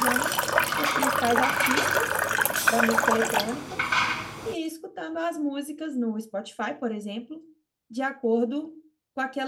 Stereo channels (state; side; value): identical; both; correlation 1.00